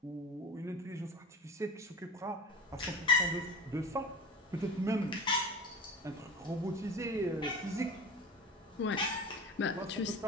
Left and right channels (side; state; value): both; normal; correlation 0.33